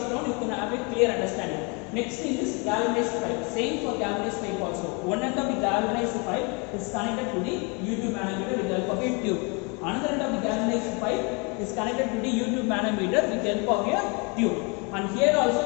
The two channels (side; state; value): right; quieter; 31.9 dB